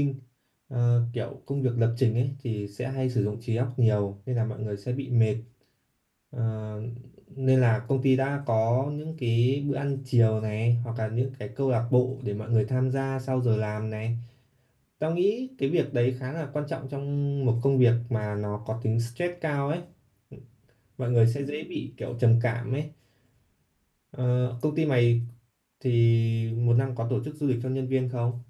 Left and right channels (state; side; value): identical; both; correlation 1.00